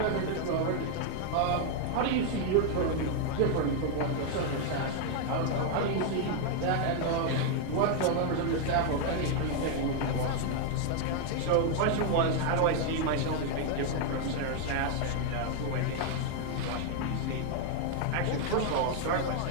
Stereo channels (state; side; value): different; both; correlation 0.00